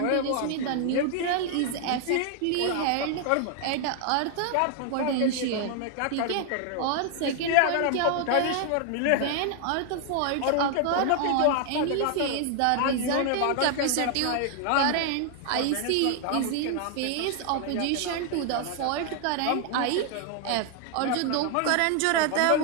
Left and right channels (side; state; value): both; different; correlation 0.00